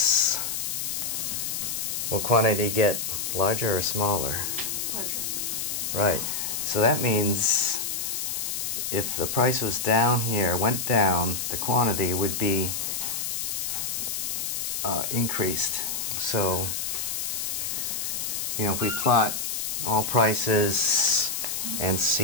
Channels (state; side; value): noise; left; hiss, 2 dB below the sound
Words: will quantity get larger or smaller? Larger. Right. So that means if the price was down here, went down, the quantity would be increased. So, you know, if we plot all prices and